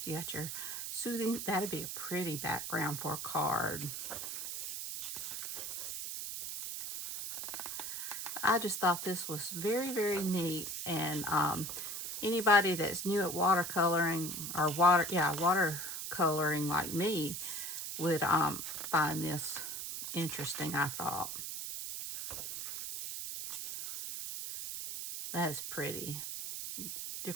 You got your soothing. That'd be a pretty background for a card. I just thought this was very, very neat. And anybody that's new at watercoloring or watercoloring like me would find this interesting, I thought. That is pretty.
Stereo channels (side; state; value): right; noise; hiss, 5 dB below the sound